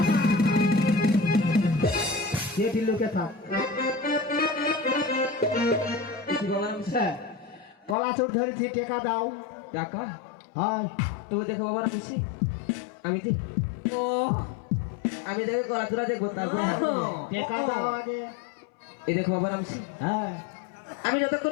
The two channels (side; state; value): right; drops out; at 8.0 s